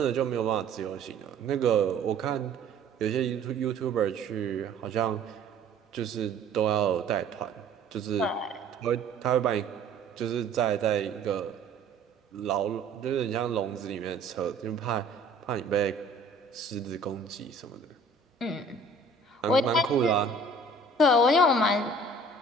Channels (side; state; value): left; quieter; 3.1 dB